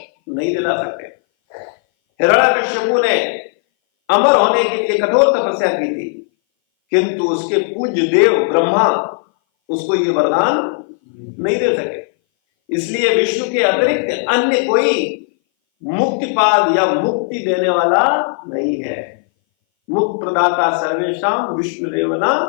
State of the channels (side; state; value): right; silent; 59 dB below the other